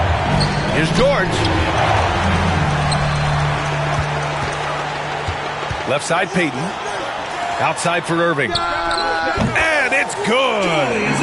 Here's George. Left side, Peyton. Outside for Irving. And it's good.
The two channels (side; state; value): both; identical; correlation 1.00